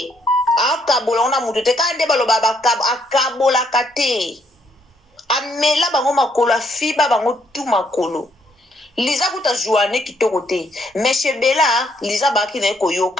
akabola ngona mutu te ka nde baloba akabolaka te amela bango makolo afiba bango tu makolo Liza kuta joane kitoko te mais chebela Liza baki na ye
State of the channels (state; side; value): normal; both; correlation 0.72